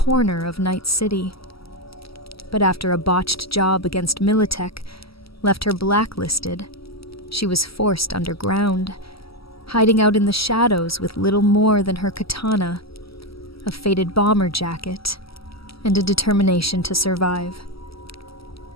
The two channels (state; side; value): late; right; 0.75 ms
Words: of Night City. But after a botched job against Militech left her blacklisted, she was forced underground, hiding out in the shadows with little more than her katana, a faded bomber jacket, and a determination to survive.